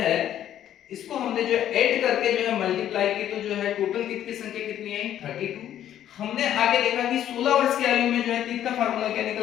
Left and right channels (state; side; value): quieter; right; 11.1 dB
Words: ऐड करके जो है मल्टीप्लाई की तो जो है टोटल टीथ की संख्या कितनी आई 32। हमने आगे देखा कि 16 वर्ष की आयु में जो है टीथ का फार्मूला क्या